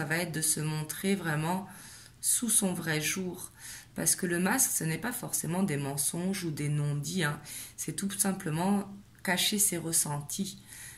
va être de se montrer vraiment sous son vrai jour, parce que le masque, ce n'est pas forcément des mensonges ou des non-dits, hein. C'est tout simplement cacher ses ressentis.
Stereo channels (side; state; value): both; identical; correlation 1.00